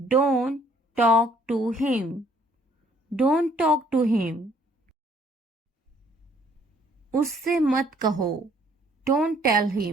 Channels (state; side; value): normal; both; correlation 0.62